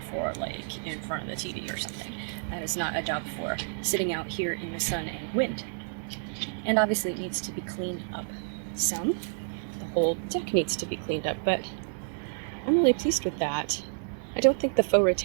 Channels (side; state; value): left; silent; digital silence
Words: for like in front of the TV or something. That is not a job for sitting out here in the sun and wind. And obviously it needs to be cleaned up some. The whole deck needs to be cleaned up, but I'm really pleased with that. I don't think the faux